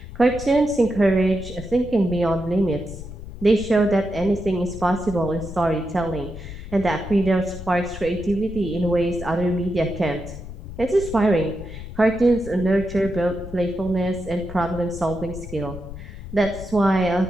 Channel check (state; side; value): noise; left; rumble, 12 dB below the sound